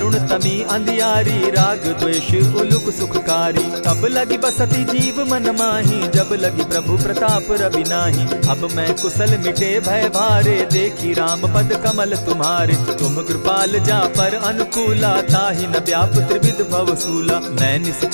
तमी अंधियारी, राग द्वेष उलुक सुखकारी। तब लगी बसती जीव मन माही, जब लगी प्रभु प्रताप रवि नाही। अब मैं कुशल मिटे भय भारे, देखी राम पद कमल तुम्हारे। तुम कृपाल जा पर अनुकूला, ताहि न व्याप त्रिविध भवसूला। मैं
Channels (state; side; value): inverted; both; correlation -1.00